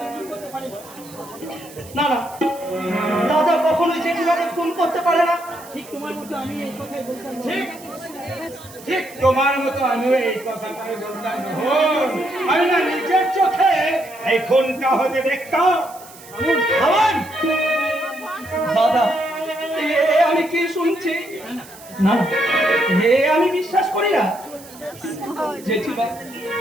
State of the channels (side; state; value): right; noise; hiss, 20 dB below the sound